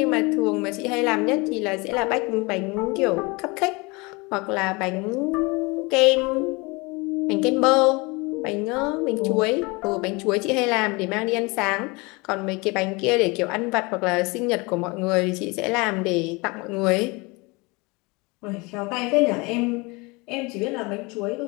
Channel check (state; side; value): quieter; right; 26.4 dB